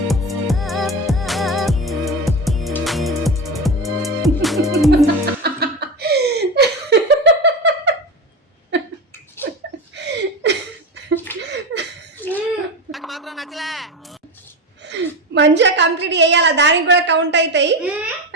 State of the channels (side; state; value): both; normal; correlation 0.22